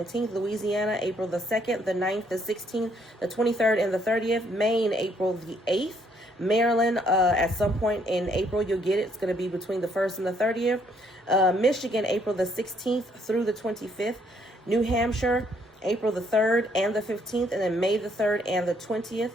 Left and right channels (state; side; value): normal; both; correlation 0.69